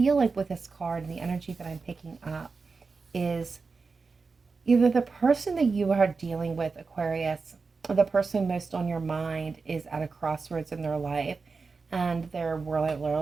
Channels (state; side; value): quieter; left; 4.5 dB